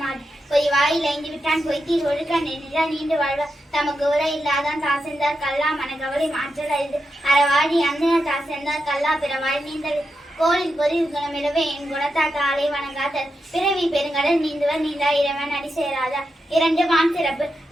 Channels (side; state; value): both; normal; correlation 0.87